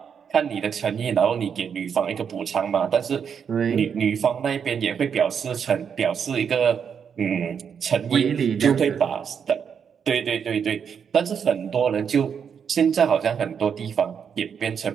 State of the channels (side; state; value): left; quieter; 7.2 dB